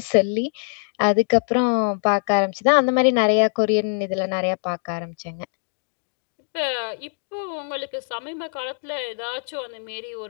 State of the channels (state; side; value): silent; right; digital silence